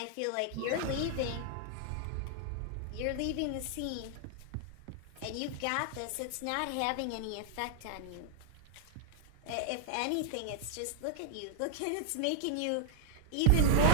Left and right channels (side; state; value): both; different; correlation -0.01